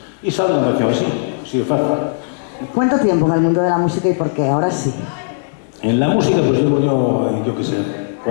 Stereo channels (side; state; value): right; silent; digital silence